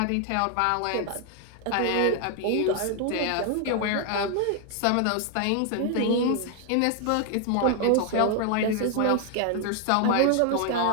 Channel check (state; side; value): different; both; correlation 0.00